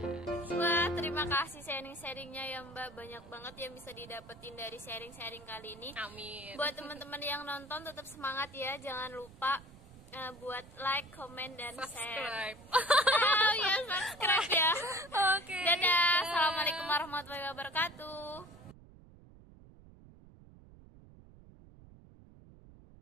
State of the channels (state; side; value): noise; right; rumble, 21 dB below the sound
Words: Wah, terima kasih sharing-sharingnya ya Mbak. Banyak banget yang bisa didapetin dari sharing-sharing kali ini. Amin. Buat teman-teman yang nonton tetap semangat ya. Jangan lupa buat like, comment, dan subscribe. Subscribe ya. Oke. Dadah. Assalamualaikum warahmatullahi wabarakatuh.